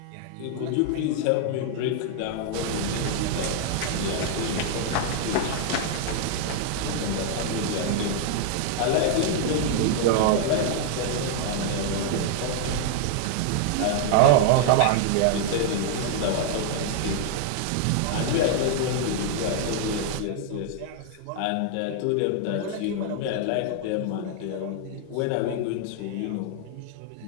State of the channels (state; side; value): different; both; correlation 0.00